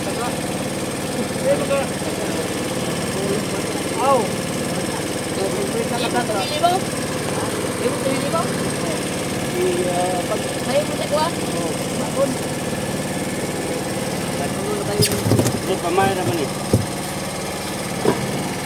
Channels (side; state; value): both; identical; correlation 1.00